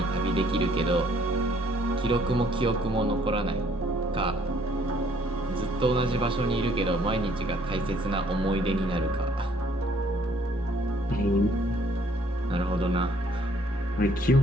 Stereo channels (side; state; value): both; normal; correlation 0.63